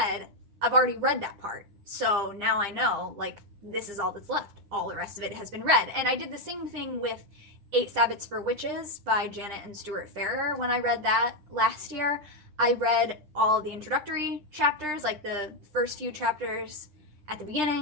I've already read that part. So now I know, like, this is all that's left. All the rest of it has been read. And I did the same thing with 8 Sabbaths for Witches by Janet and Stuart Farrer. When I read that last year, I read all the introductory chapters, like the first few chapters at the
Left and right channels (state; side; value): late; left; 9.9 ms